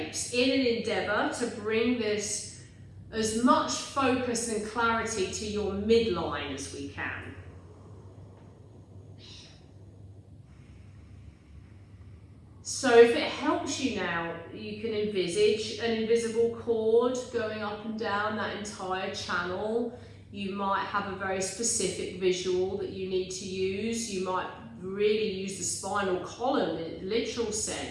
in an endeavour to bring this as much focus and clarity to your midline as we can. So if it helps you now, you can envisage an invisible cord going up and down that entire channel. You might have a very specific visual that you need to use. You might really use the spinal column in a literal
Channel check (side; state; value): both; identical; correlation 1.00